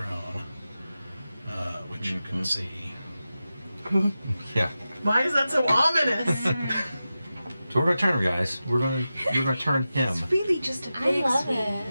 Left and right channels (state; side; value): inverted; both; correlation -0.93